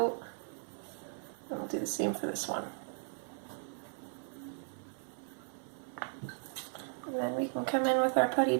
And we'll do the same for this one. And then we can come in with our putty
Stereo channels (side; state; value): left; silent; 53 dB below the other